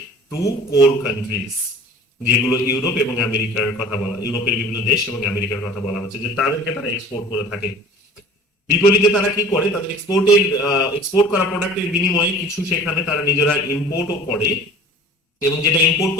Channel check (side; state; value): both; normal; correlation 0.44